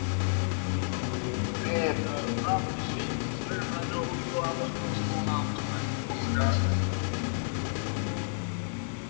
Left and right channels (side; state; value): right; silent; digital silence